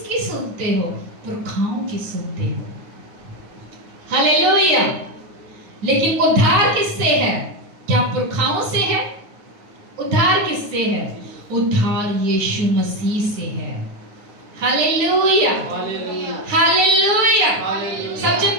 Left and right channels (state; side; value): late; left; 9.6 ms